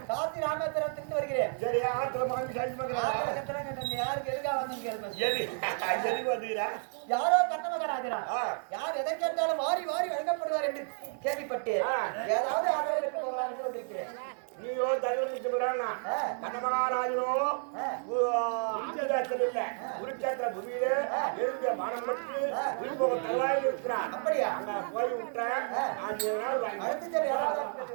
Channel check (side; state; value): left; silent; 57 dB below the other